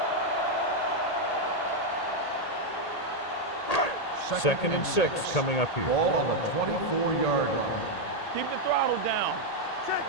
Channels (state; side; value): late; right; 1.8 ms